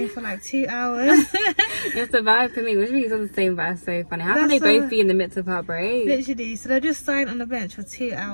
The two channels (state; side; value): inverted; both; correlation -1.00